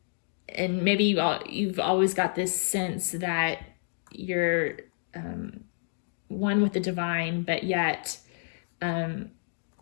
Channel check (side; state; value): right; silent; digital silence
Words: and maybe you've always got this sense that you're one with the divine, but yet